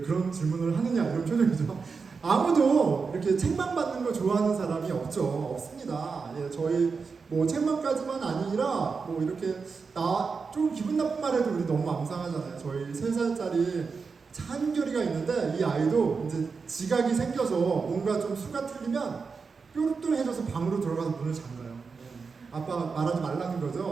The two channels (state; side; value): quieter; left; 5.0 dB